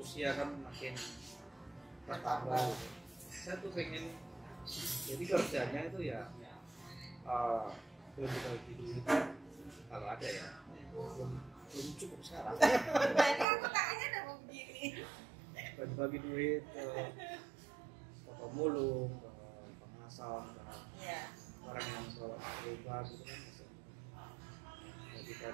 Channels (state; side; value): drops out; left; at 13.5 s